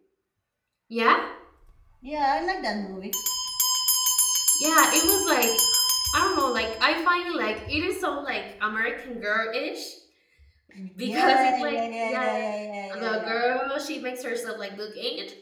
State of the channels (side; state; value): both; identical; correlation 1.00